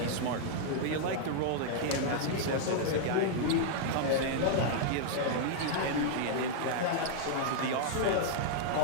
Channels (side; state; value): both; different; correlation -0.01